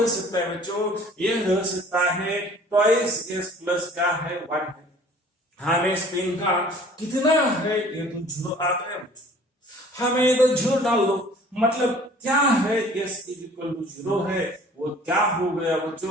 सकता है बच्चों? ये रह सकता है ट्वाइस s प्लस क्या है? 1 है। हमें स्पिन का कितना है? ये तो 0 आ गया बच्चों। हमें इधर 0 डाल दो, मतलब क्या है? s इक्वल टू 0 है। वो क्या हो गया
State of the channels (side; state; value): both; normal; correlation 0.50